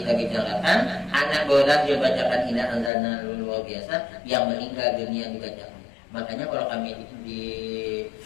bicarakan. Anak bola dia bacakan inna anzalna luar biasa. Yang meninggal dunia dibacakan. Makanya kalau kami di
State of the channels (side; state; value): right; drops out; at 2.9 s